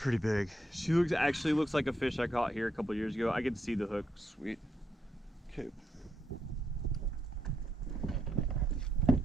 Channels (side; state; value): both; normal; correlation 0.80